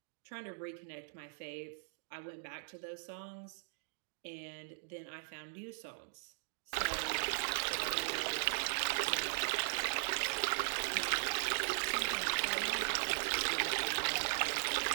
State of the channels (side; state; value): left; silent; digital silence